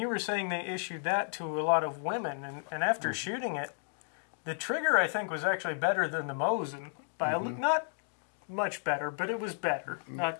you were saying they issued that to a lot of women, and after shooting it, the trigger I think was actually better than the Mosin by not much better, but it was better. Not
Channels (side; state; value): right; silent; digital silence